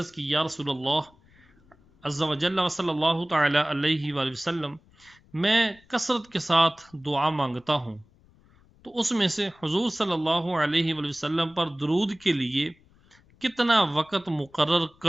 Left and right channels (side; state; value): left; noise; rumble, 30 dB below the sound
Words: کی یا رسول اللہ عز و جل و صلی اللہ تعالی علیہ وآلہ وسلم میں کثرت کے ساتھ دعا مانگتا ہوں تو اس میں سے حضور صلی اللہ علیہ وآلہ وسلم پر درود کے لیے کتنا وقت مقرر